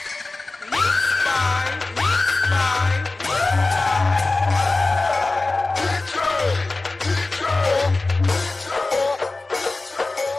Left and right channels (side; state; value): right; quieter; 3.3 dB